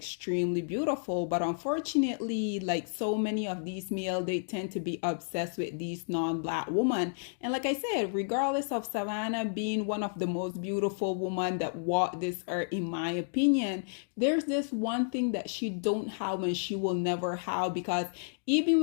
beautiful, but unfortunately, like so many of these males, they tend to be obsessed with these non-black women. And like I said, regardless of Savannah being one of the most beautiful women that walked this earth, in my opinion, there's this one thing that she don't have and she will never have, because even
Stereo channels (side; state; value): right; silent; digital silence